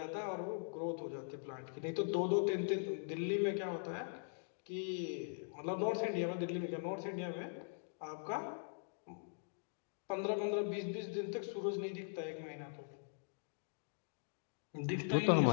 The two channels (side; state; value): right; silent; digital silence